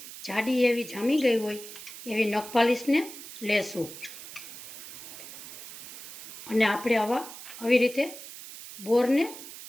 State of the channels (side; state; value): right; noise; hiss, 13 dB below the sound